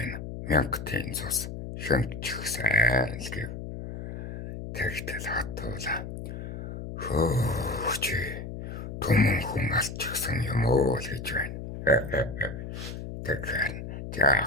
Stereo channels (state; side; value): noise; left; hum, 8 dB below the sound